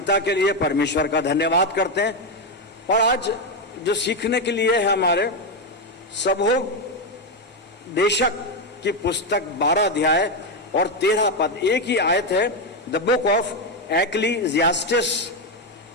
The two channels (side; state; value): both; normal; correlation 0.07